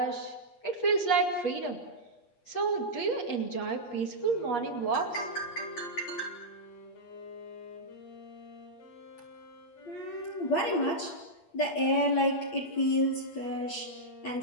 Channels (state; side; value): late; right; 8.4 ms